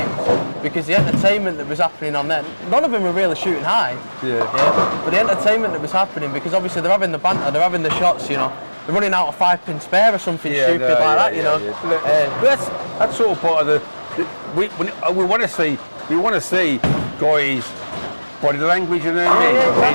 because the entertainment that was happening on there, none of them were really shooting high. But the entertainment that was happening, because obviously they're having the banter, they're having the shots, you know. They're running out of 5-pin spare or something stupid like that, you know. But that's sort of part of we want to see guys body language, you know what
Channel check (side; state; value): both; inverted; correlation -1.00